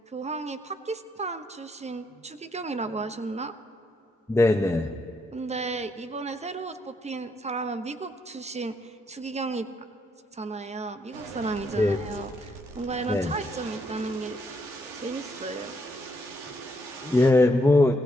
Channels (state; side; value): normal; both; correlation 0.75